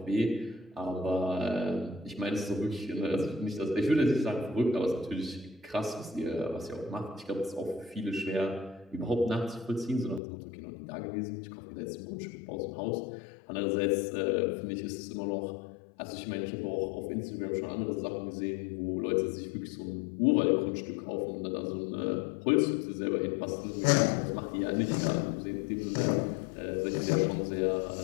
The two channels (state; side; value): drops out; right; at 10.2 s